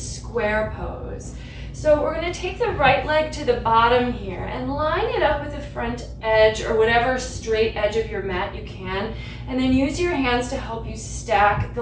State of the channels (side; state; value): both; identical; correlation 1.00